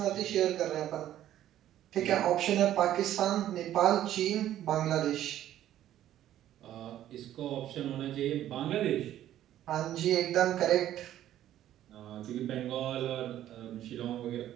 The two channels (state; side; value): quieter; left; 12.3 dB